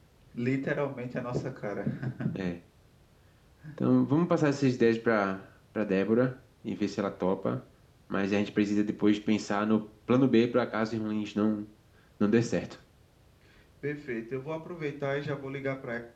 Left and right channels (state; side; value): identical; both; correlation 1.00